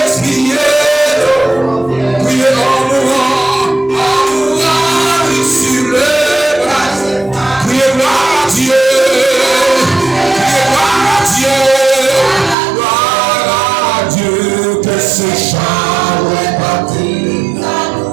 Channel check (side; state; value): left; drops out; at 12.6 s